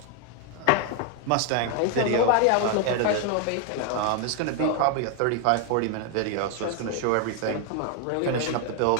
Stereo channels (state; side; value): different; both; correlation 0.01